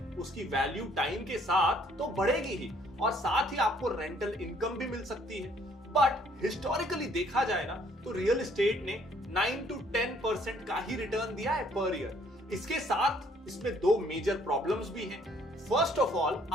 उसकी वैल्यू टाइम के साथ तो बढ़ेगी ही, और साथ ही आपको रेंटल इनकम भी मिल सकती है। बट हिस्टोरिकली देखा जाए ना तो रियल एस्टेट ने 9 to 10% का ही रिटर्न दिया है पर ईयर। इसके साथ इसमें 2 मेजर प्रॉब्लम्स भी हैं। फर्स्ट ऑफ ऑल,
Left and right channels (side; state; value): both; normal; correlation 0.62